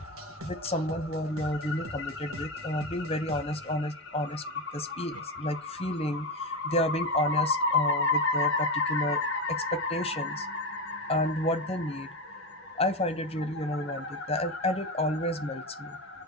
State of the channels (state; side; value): normal; both; correlation 0.18